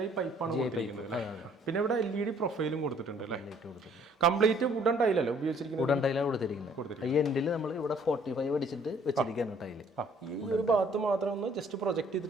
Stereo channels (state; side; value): normal; both; correlation 0.60